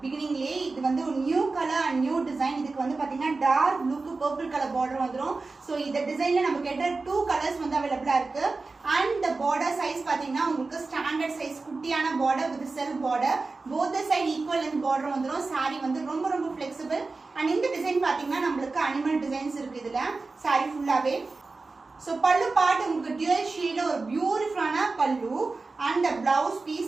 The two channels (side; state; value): left; quieter; 3.8 dB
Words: beginningலயே. இது வந்து ஒரு new colour and new design. இதுக்கு வந்து பாத்தீங்கன்னா டார்க் ப்ளூக்கு பர்பிள் கலர் border வந்துரும். சோ இந்த டிசைன்ல நமக்கு கேட்ட 2 கலர்ஸ் வந்து அவேலபிளா இருக்கு. and the border size பாத்தீங்கன்னா உங்களுக்கு ஸ்டாண்டர்ட் சைஸ் குட்டியான border with self border. both the side equal length border வந்துரும். saree வந்து ரொம்ப flexible. and இந்த டிசைன் பாத்தீங்கன்னா நமக்கு அனிமல் டிசைன்ஸ் இருக்கு இதுல saree ஃபுல்லாவே. So pallu part உங்களுக்கு dual shade ஒரு பியூட்டிஃபுல்லான pallu and the blouse